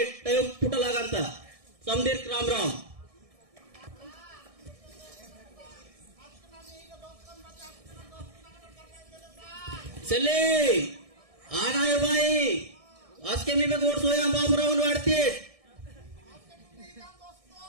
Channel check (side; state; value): left; late; 1.6 ms